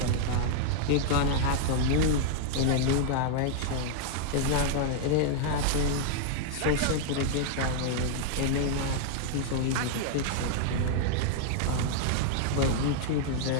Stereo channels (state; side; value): different; both; correlation 0.00